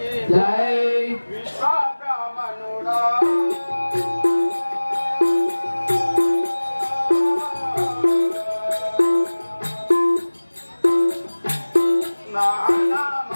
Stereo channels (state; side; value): inverted; both; correlation -1.00